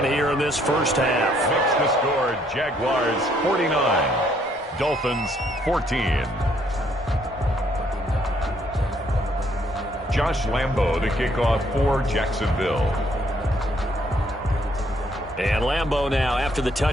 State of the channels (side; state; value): both; normal; correlation 0.68